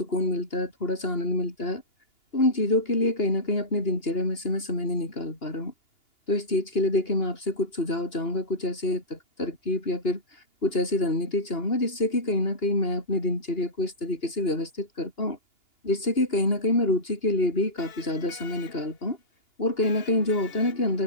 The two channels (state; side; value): late; right; 2.8 ms